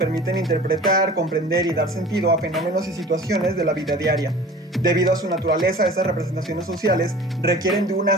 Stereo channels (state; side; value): normal; both; correlation 0.43